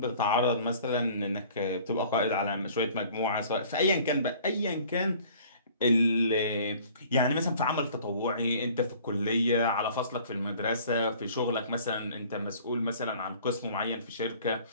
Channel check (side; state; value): both; inverted; correlation -0.51